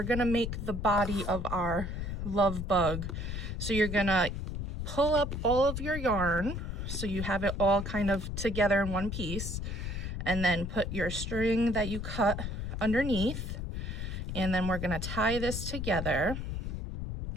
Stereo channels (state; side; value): noise; left; rumble, 4 dB below the sound